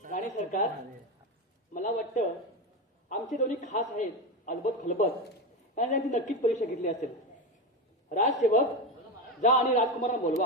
राणे सरकार मला वाटतं आमचे दोन्ही खास आहेत अलबत खलबत. आणि त्यांनी नक्कीच परीक्षा घेतली असेल. राजसेवक जा आणि राजकुमारांना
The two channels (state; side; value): normal; both; correlation 0.16